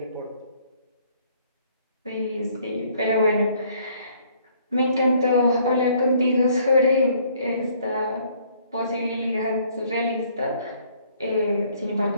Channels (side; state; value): both; inverted; correlation -0.62